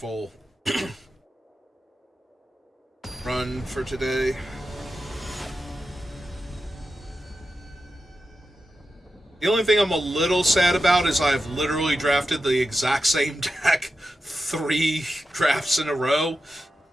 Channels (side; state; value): both; normal; correlation 0.90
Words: run for today. The only thing I'm a little sad about is I've literally drafted the exact same deck 3 drafts in a row.